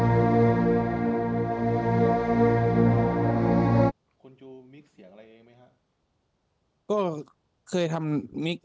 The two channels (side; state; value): both; identical; correlation 1.00